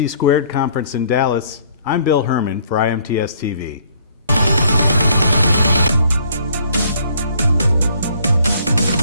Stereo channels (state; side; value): inverted; both; correlation -0.62